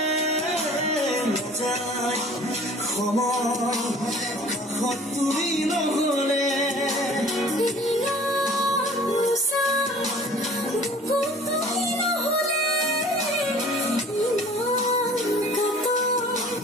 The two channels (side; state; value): both; normal; correlation 0.48